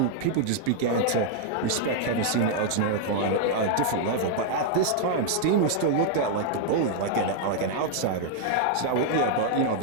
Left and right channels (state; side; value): different; both; correlation -0.01